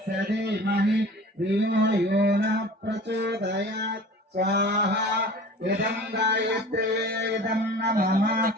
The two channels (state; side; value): normal; both; correlation 0.41